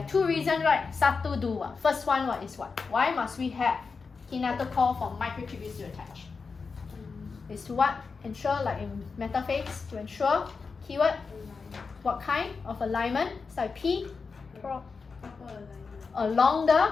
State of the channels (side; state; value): right; quieter; 4.8 dB